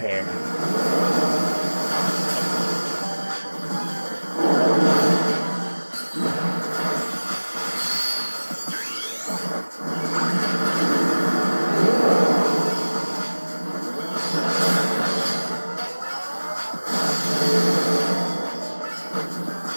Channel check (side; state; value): both; inverted; correlation -1.00